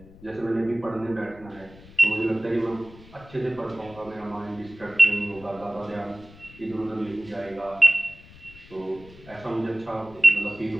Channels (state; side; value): noise; left; rumble, 21 dB below the sound